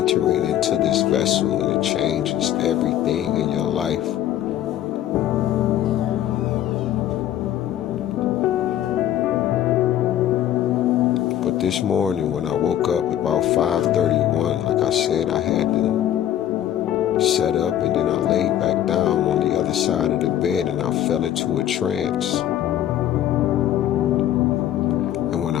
into this vessel, and it changes everything in your life. But this morning when I woke up about 5:31, like I said, I had to set up, and then I laid back down on the other side of the bed, and I fell into a trance. And when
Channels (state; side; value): quieter; right; 11.7 dB